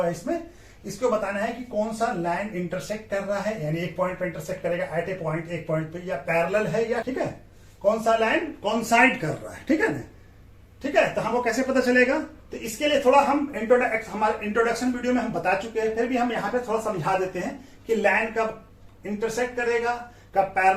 है इसमें, इसको बताना है कि कौन सा लाइन इंटरसेक्ट कर रहा है, यानी एक पॉइंट पे इंटरसेक्ट करेगा एट ए पॉइंट, एक पॉइंट पे, या पैरेलल है, या ठीक है कौन सा लाइन कॉन्साइड कर रहा है। ठीक है ना, ठीक है, तो हमको कैसे पता चलेगा, तो इसके लिए थोड़ा हम हमारे इंट्रोडक्शन वीडियो में हम बता चुके हैं, फिर भी हम यहाँ पे थोड़ा समझा देते हैं कि लाइन कब इंटरसेक्ट करेगा, कब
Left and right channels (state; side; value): identical; both; correlation 1.00